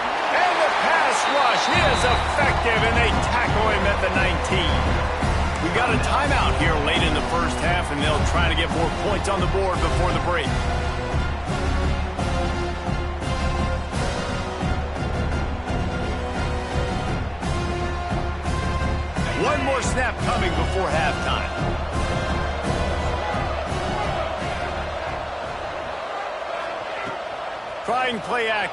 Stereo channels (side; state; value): both; identical; correlation 1.00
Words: the pass rush is effective, and they tackle him at the 19. We got a timeout here late in the first half, and they'll try to get more points on the board before the break. One more snap coming before halftime. Trying play